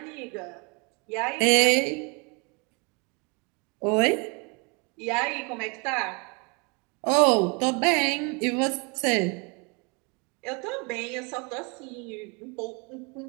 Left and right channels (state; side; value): quieter; left; 31.8 dB